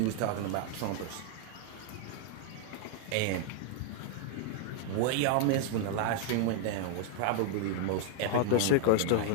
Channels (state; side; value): different; both; correlation 0.00